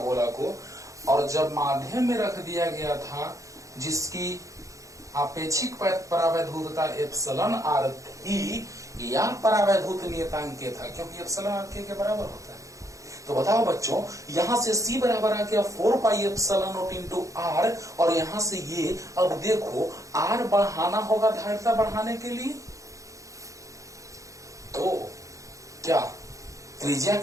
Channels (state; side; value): late; left; 0.16 ms